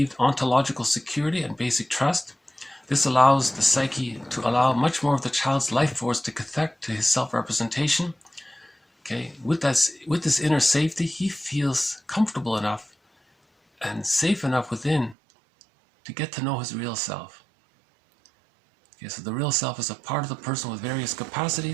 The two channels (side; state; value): left; drops out; at 15.2 s